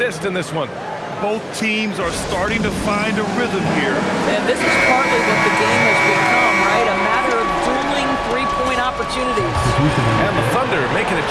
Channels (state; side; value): identical; both; correlation 1.00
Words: in this one. Both teams are starting to find a rhythm here. And this is partly what the game has become, right? A matter of dueling three-point opportunities. And the Thunder making a